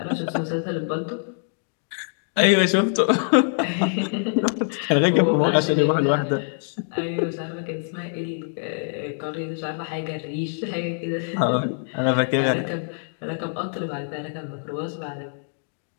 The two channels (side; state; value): right; silent; digital silence